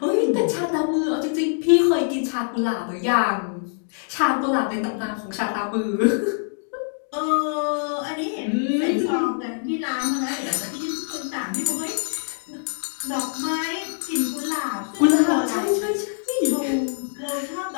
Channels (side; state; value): right; silent; digital silence